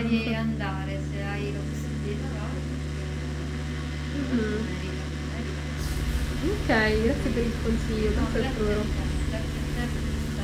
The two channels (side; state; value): both; identical; correlation 1.00